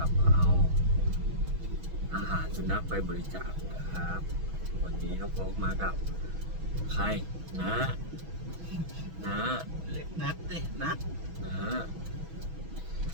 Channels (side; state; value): left; late; 6.1 ms